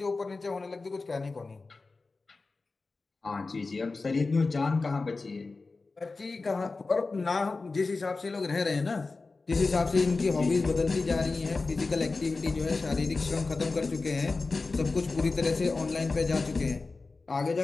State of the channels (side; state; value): right; quieter; 3.8 dB